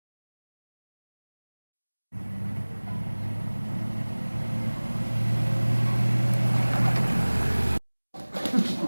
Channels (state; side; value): inverted; both; correlation -1.00